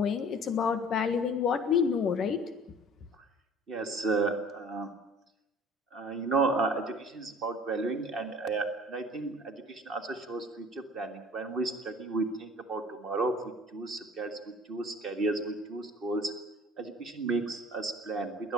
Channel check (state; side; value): normal; both; correlation 0.47